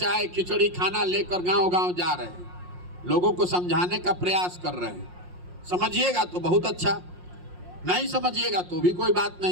खिचड़ी खाना लेकर गांव-गांव जा रहे हैं, लोगों को समझाने का प्रयास कर रहे हैं। समझिएगा तो बहुत अच्छा, नहीं समझिएगा तो भी कोई बात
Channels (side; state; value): left; late; 5.6 ms